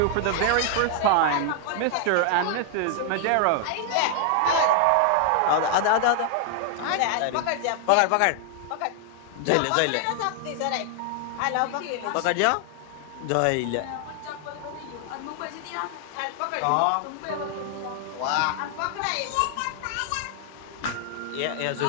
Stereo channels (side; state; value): both; different; correlation 0.00